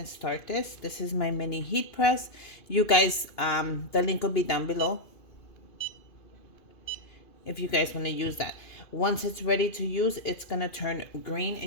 start this. This is my mini heat press. You guys, the link will be down below if you guys want to use that. Once it's ready to use, it's gonna turn green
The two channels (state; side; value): late; right; 2.5 ms